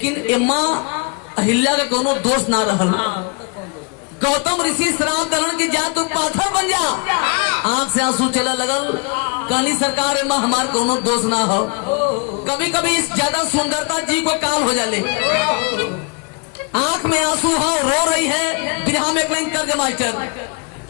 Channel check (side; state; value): right; quieter; 33.0 dB